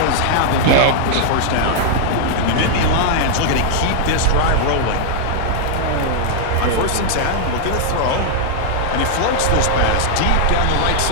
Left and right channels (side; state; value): both; different; correlation -0.01